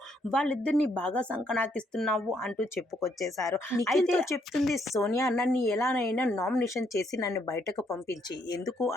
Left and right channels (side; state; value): both; normal; correlation 0.72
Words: వాళ్ళిద్దరిని బాగా సంకనాకిస్తున్నావు అంటూ చెప్పుకొచ్చేశారు. అయితే చెప్తుంది సోనియా, నన్ను ఎలానైనా నామినేషన్ చేసి నన్ను బయటకు పంపించి, ఎందుకు